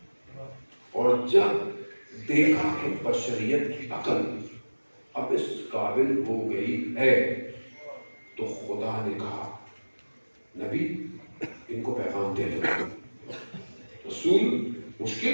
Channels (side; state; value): both; inverted; correlation -1.00